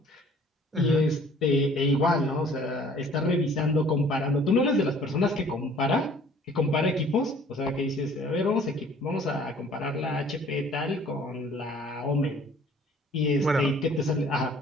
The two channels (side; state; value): both; normal; correlation 0.54